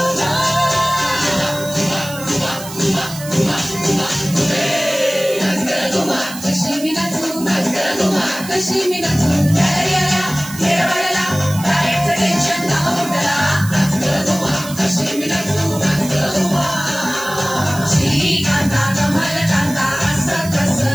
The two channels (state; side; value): noise; right; hiss, 13 dB below the sound